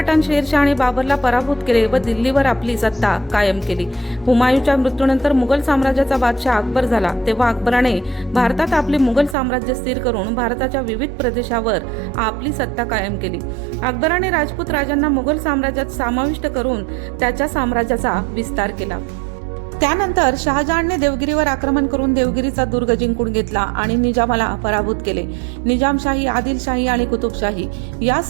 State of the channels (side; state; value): left; drops out; at 9.3 s